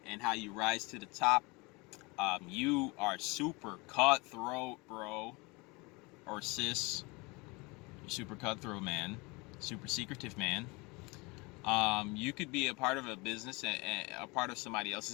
and how you rise to the top, you are super cutthroat, bro, or sis. You're super cutthroat, man. Super secretive, man. You could be a part of a business, a part of somebody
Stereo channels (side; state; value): right; quieter; 26.5 dB